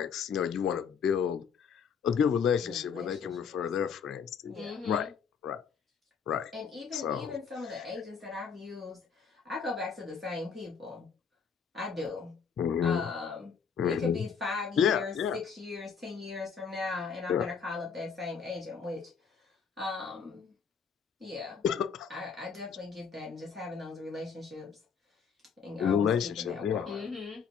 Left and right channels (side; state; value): right; quieter; 6.4 dB